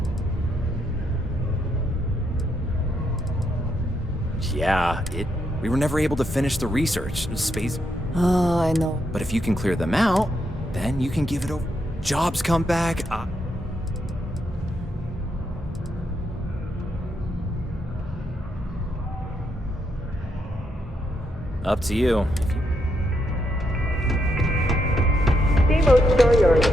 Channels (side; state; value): both; normal; correlation 0.79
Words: Yeah, we were never able to finish the research. Space. Oh, I know. But if you can clear them out, then you can give it over. Jobs come back. Up to you. Steamboat Storyard